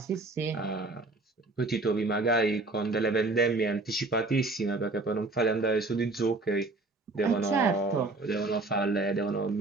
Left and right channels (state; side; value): quieter; left; 3.2 dB